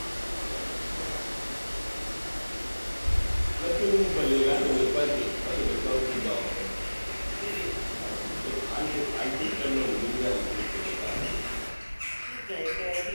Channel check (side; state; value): both; inverted; correlation -1.00